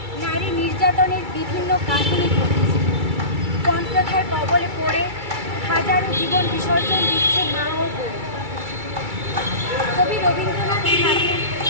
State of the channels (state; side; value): late; left; 2.3 ms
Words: নারী নির্যাতনের বিভিন্ন কাহিনী ঘটেছে। পণ প্রথার কবলে পড়ে হাজারো জীবন বিসর্জন দিচ্ছে মা ও বোন। কবি রবীন্দ্রনাথ ঠাকুর